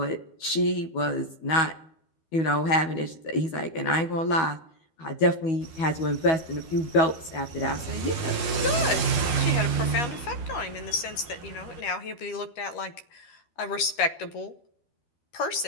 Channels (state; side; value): late; right; 13 ms